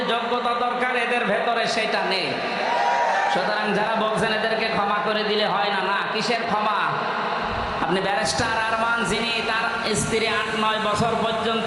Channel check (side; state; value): both; identical; correlation 1.00